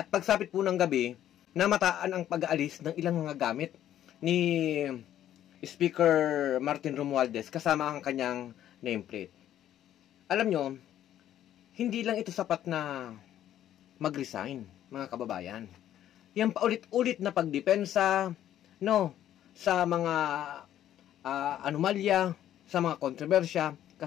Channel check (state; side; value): quieter; right; 11.6 dB